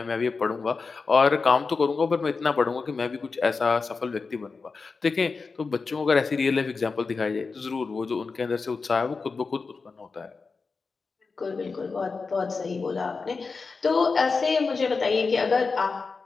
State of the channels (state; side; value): quieter; right; 4.5 dB